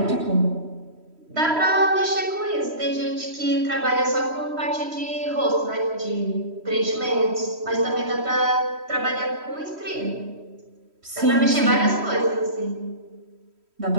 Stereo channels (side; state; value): left; late; 3.1 ms